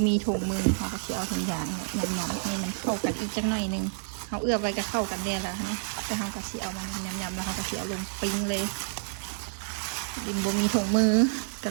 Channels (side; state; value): left; silent; digital silence